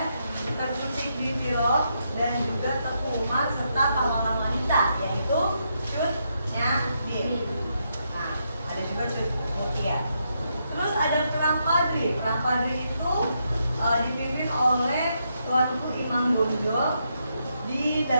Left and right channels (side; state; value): both; inverted; correlation -0.80